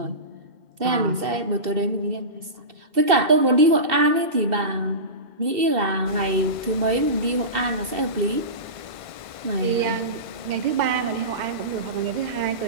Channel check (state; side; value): late; left; 2.7 ms